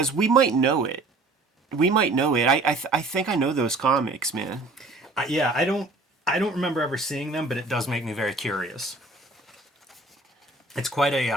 we might know it. We might know it. I think I know those comics, man. Yeah, I don't remember ever seeing them, but it does make me very curious. It's quite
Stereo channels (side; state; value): left; quieter; 3.1 dB